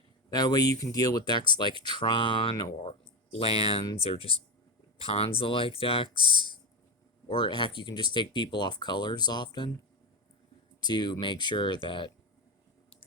That way you can deal with decks like Tron or lands or just Ponza-like decks. Or heck, you can just take people off colors often to make sure that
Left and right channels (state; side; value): normal; both; correlation 0.17